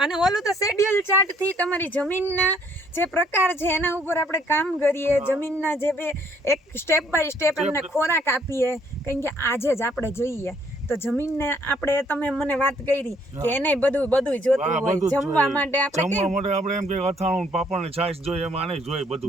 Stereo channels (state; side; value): normal; both; correlation 0.65